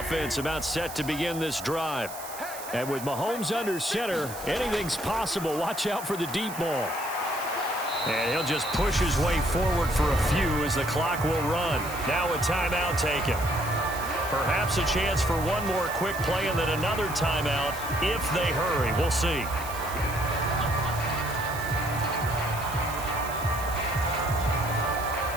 about set to begin this drive. And with Mahomes under center, anything's possible. Watch out for the deep ball. And he'll just push his way forward for a few as the clock will run. Now a timeout taken. Perhaps a chance for one more quick play and then another timeout if they hurry. We'll see.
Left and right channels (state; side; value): noise; right; hiss, 12 dB below the sound